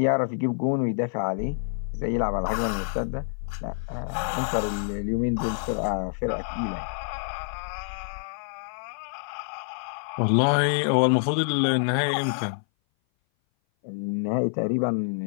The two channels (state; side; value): silent; right; 57 dB below the other